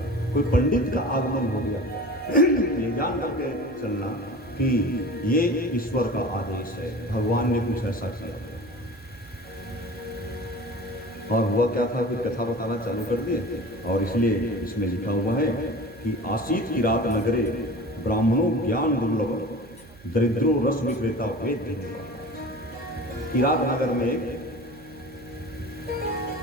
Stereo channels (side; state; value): right; noise; hum, 24 dB below the sound